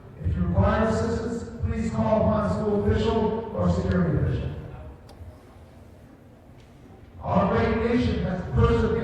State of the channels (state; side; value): identical; both; correlation 1.00